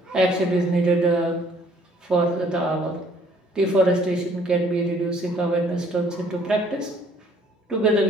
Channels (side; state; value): both; normal; correlation 0.60